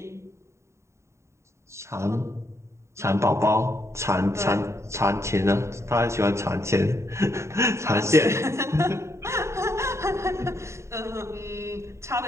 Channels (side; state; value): left; late; 0.14 ms